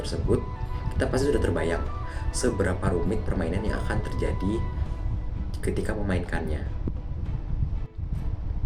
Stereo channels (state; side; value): identical; both; correlation 1.00